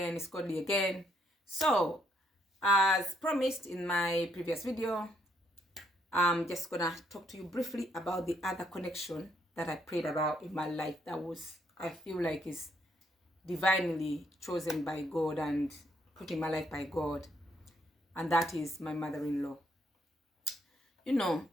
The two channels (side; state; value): both; normal; correlation 0.72